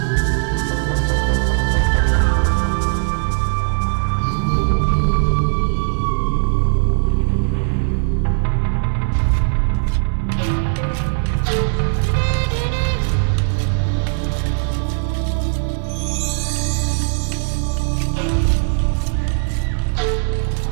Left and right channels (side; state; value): left; silent; 67 dB below the other